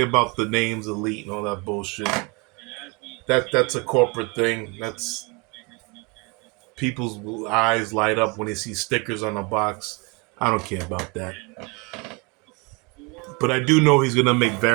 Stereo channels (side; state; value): left; quieter; 29.5 dB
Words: about the names elite and all that bullshit. That's a corporate thing. That's people's eyes light up when they see stickers on a box. I don't care about that. But I do know he's gonna make